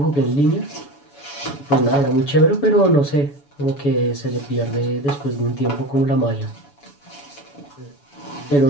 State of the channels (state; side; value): late; right; 7.0 ms